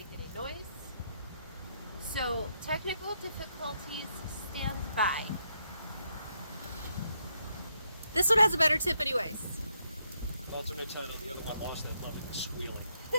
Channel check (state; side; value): inverted; both; correlation -0.77